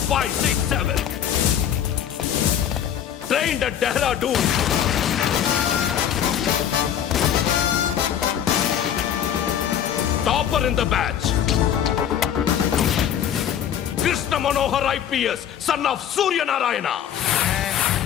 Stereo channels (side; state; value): right; quieter; 9.6 dB